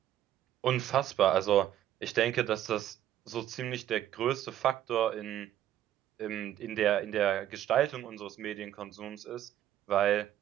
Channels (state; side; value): quieter; left; 12.0 dB